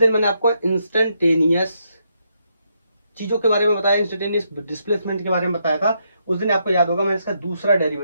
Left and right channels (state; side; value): inverted; both; correlation -0.78